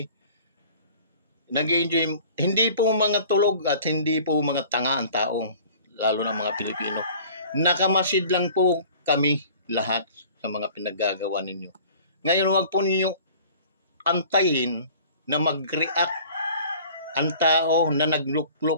Nag-i-enjoy, hindi po mga tulog at hindi po mga tanga ang taong, lalo ng mga Pilipino. Nakamasid lang po kami lahat sa mga pinaggagawa ninyo. Ngayon, huwag po ninyo antayin na mag-react ang tao na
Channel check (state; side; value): inverted; both; correlation -0.47